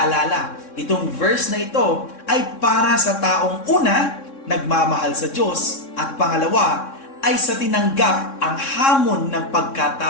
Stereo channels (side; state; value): right; late; 3.6 ms